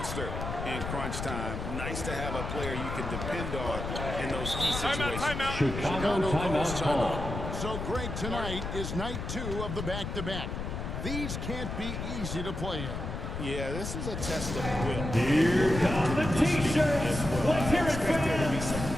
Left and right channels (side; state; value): left; noise; rumble, 5 dB below the sound